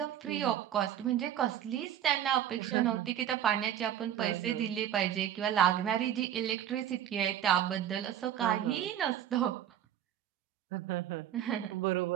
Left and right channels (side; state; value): left; quieter; 10.6 dB